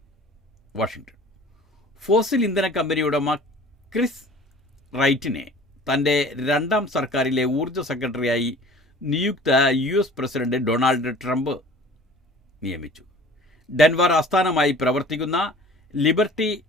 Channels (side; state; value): both; normal; correlation 0.46